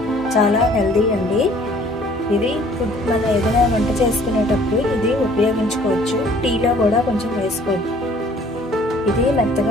చాలా హెల్దీ అండి. ఇది మన ఏదైనా వంట చేసుకునేటప్పుడు ఇది ఉపయోగించుకోవచ్చు. టీలో కూడా కొంచెం వేసుకోవచ్చు. ఇది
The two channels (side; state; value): both; normal; correlation 0.56